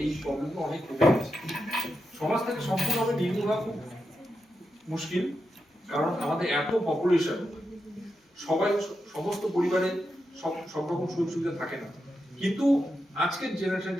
এই প্রবলেমগুলো অনেক কমে গেছে। সমাজ থেকে সম্পূর্ণভাবে নির্মূল হওয়া খুব মুশকিল, কারণ আমাদের এত পপুলেশন, সমস্ত পরিবারে সব রকম সুযোগ সুবিধা থাকে না। কিন্তু আজকের জেনারেশন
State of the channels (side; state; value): both; normal; correlation 0.87